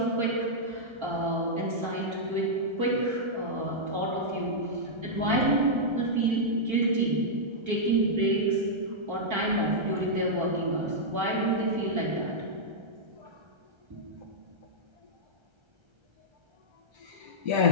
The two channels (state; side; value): late; left; 1.3 ms